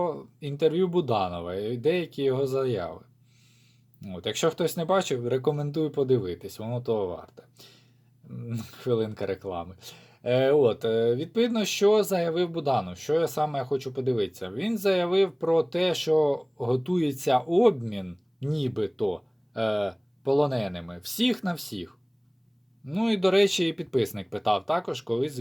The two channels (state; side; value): identical; both; correlation 1.00